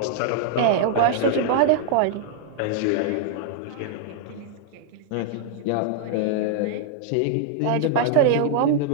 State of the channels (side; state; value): both; different; correlation 0.00